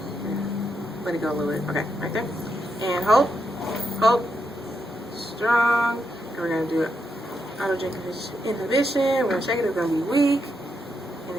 Let it go a little bit. Okay, right there. And hold, strong. And we're going to do autogenic inhibition. We're going to check it, it's going to be weak. And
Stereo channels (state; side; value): normal; both; correlation 0.82